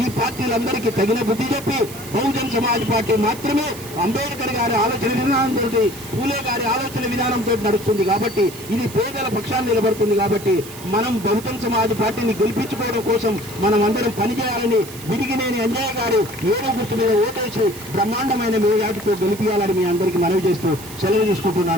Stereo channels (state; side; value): noise; right; hiss, 15 dB below the sound